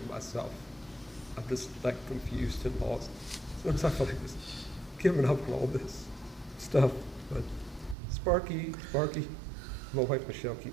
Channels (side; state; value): left; drops out; at 8.0 s